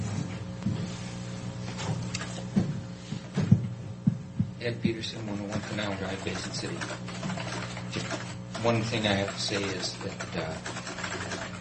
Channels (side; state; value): both; identical; correlation 1.00